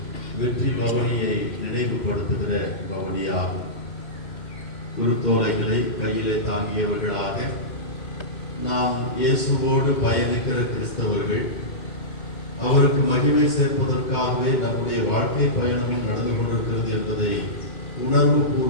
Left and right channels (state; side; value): late; right; 2.2 ms